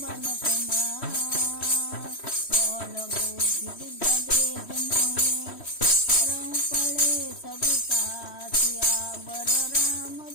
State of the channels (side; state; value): right; late; 3.1 ms